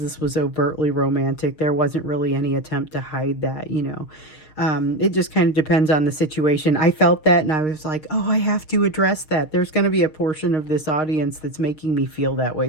this was overtly romantic. There wasn't really any attempt to hide that, you know. It just kind of depends on the situation. I felt that, and I was like, oh, I have to address that. There's going to be a portion of this audience that's making me feel that way.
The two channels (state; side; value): late; right; 6.5 ms